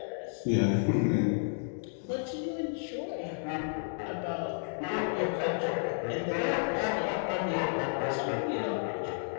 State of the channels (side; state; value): right; silent; digital silence